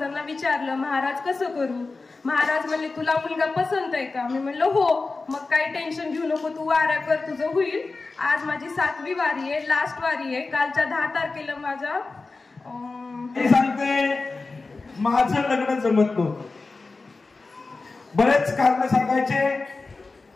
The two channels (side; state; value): right; quieter; 3.8 dB